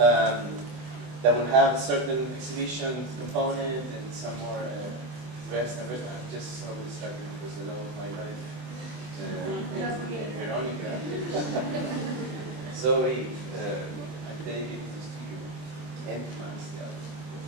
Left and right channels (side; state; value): left; late; 24 ms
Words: will have certain exhibition component and some more rest and rest. I'm just so distracted because the love of my life, Veronica, Zoe, I take it to the studio, and Max, the other.